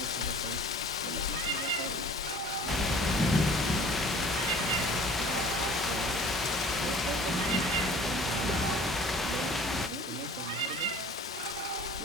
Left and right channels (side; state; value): both; normal; correlation 0.47